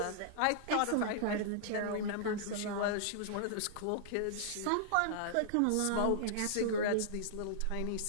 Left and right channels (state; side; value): different; both; correlation -0.01